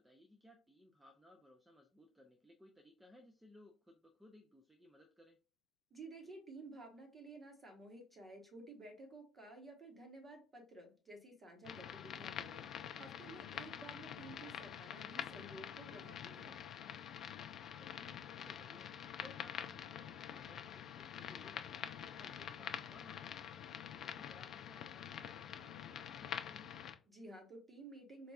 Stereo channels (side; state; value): right; quieter; 6.3 dB